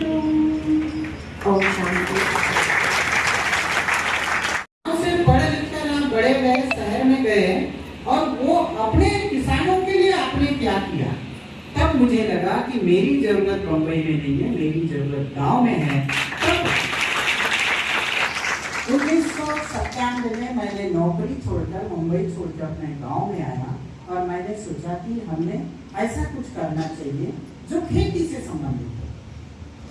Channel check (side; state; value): both; identical; correlation 1.00